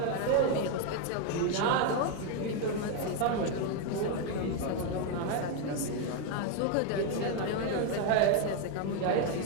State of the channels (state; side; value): different; both; correlation 0.01